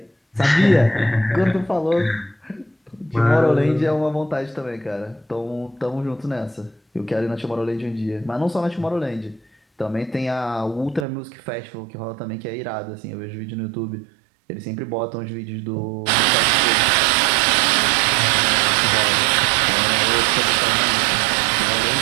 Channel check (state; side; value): drops out; left; at 11.1 s